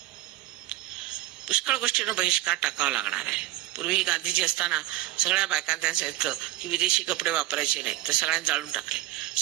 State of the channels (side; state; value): left; quieter; 15.7 dB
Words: पुष्कळ गोष्टींना बहिष्कार टाकावा लागणार आहे. पूर्वी गांधीजी असताना सगळ्या बायकांना त्यांना सांगितलं की विदेशी कपडे वापरायचे नाही, तर सगळ्यांनी जाळून टाकले.